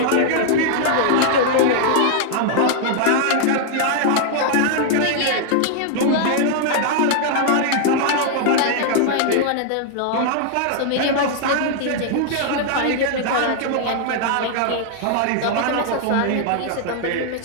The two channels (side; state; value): both; different; correlation -0.01